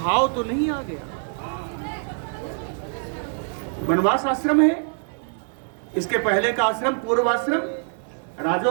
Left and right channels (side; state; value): left; silent; 56 dB below the other